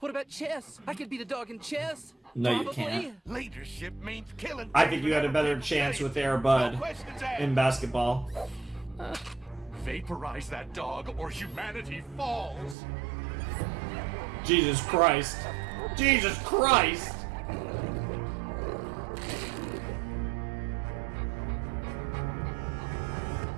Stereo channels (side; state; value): left; drops out; at 12.8 s